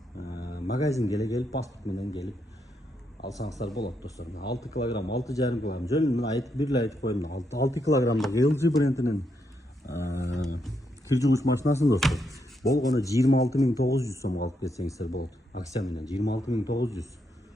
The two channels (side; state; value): both; normal; correlation 0.79